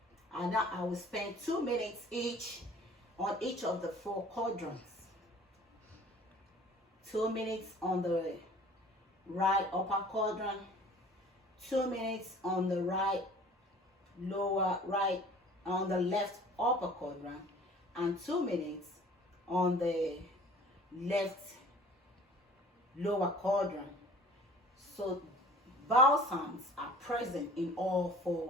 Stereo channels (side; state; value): both; normal; correlation 0.48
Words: and now I will spend 2 minutes each on each of the 4 quadrants. 2 minutes on the right upper quadrant, 2 minutes on the right on the left upper quadrant, and 2 minutes on the left lower quadrant. So vowel sounds are present in all